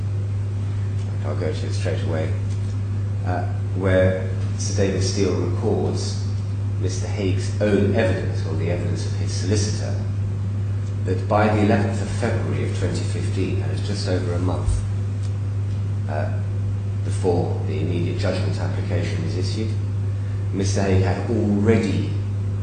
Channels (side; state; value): both; identical; correlation 1.00